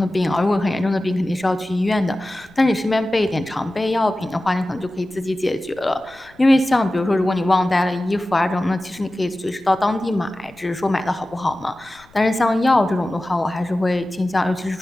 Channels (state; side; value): noise; left; rumble, 28 dB below the sound